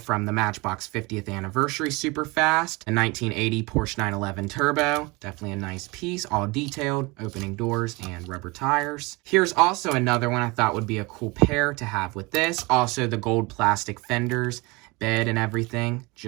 the Matchbox 50th Anniversary Superfast, a 1980 Porsche 911 Turbo. Definitely a nice piece, all detailed, opening doors and rubber tires. Here's also another one I thought would be a cool pair to have with this. Also the gold plastic fenders, bed and everything,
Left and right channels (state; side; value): quieter; left; 25.1 dB